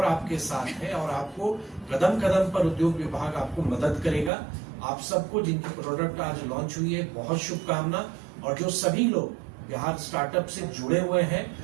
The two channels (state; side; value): drops out; left; at 4.3 s